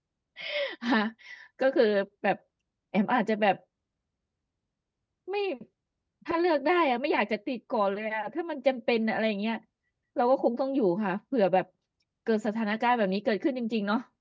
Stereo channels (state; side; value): identical; both; correlation 1.00